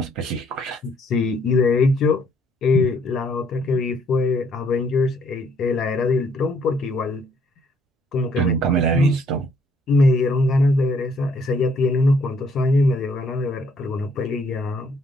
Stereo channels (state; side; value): normal; both; correlation 0.66